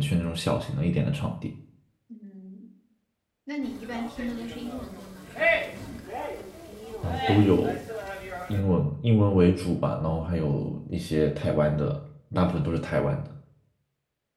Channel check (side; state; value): both; identical; correlation 1.00